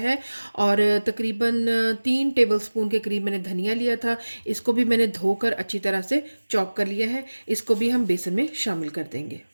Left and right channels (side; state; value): both; inverted; correlation -1.00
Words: और तकरीबन 3 टेबलस्पून के करीब मैंने धनिया लिया था। इसको भी मैंने धोकर अच्छी तरह से चॉप कर लिया है। इसको भी हम बेसन में शामिल कर देंगे।